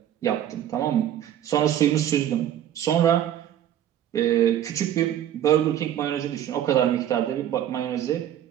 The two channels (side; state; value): left; quieter; 11.1 dB